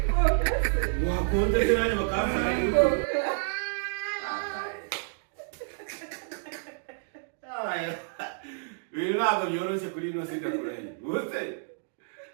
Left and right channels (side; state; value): left; silent; digital silence